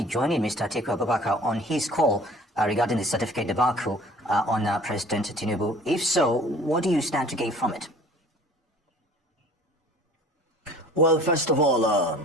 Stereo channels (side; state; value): both; normal; correlation 0.49